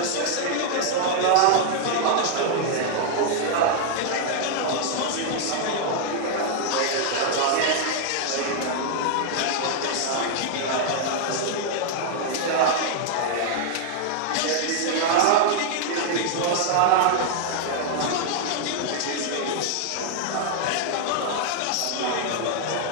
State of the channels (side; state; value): both; different; correlation 0.00